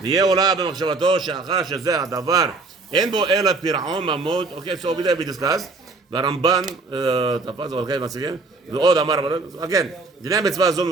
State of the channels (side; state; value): left; quieter; 3.6 dB